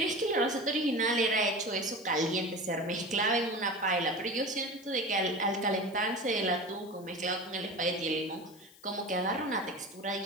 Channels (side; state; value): left; noise; hiss, 24 dB below the sound